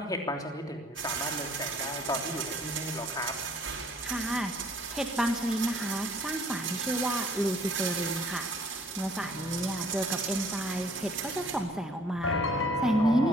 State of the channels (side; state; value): both; normal; correlation 0.57